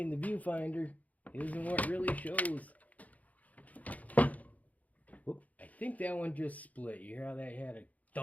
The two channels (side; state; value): right; late; 0.074 ms